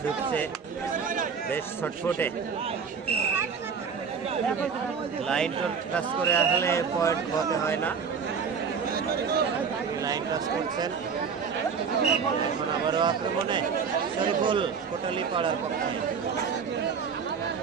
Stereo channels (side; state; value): left; quieter; 6.1 dB